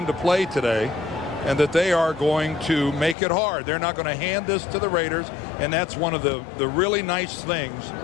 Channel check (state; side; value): drops out; right; at 3.2 s